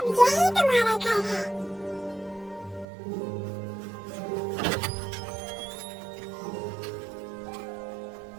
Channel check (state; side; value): drops out; left; at 2.9 s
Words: यही तुम्हारा घर है।